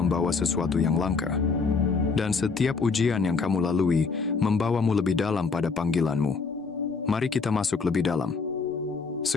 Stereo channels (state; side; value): quieter; right; 4.7 dB